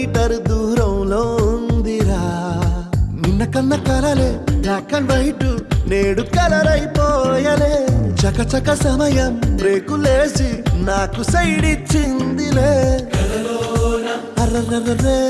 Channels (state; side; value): identical; both; correlation 1.00